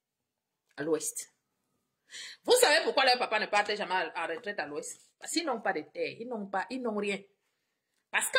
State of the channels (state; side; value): identical; both; correlation 1.00